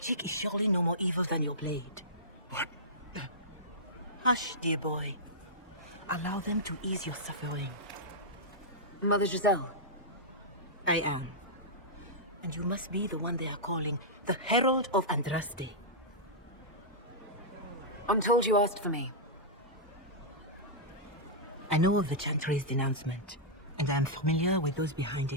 is surely no more evil than your blade. What? Hush, dear boy. Allow them to ease your suffering. Mother Giselle. I am. And you must be the one they are calling the Herald of Andraste. I'm told you asked for me. I know of the Chantry's denouncement, and I am familiar with those behind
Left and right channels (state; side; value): normal; both; correlation -0.12